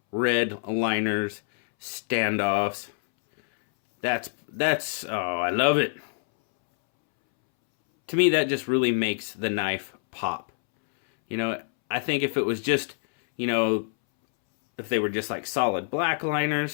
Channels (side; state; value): right; silent; 61 dB below the other